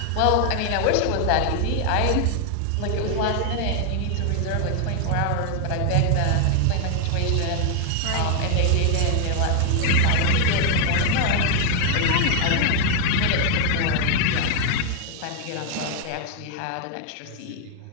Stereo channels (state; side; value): different; both; correlation 0.00